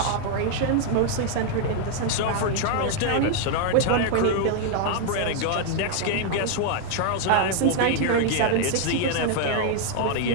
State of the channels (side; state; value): both; different; correlation 0.00